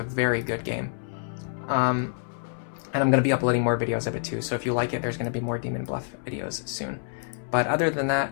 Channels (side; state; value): right; silent; 60 dB below the other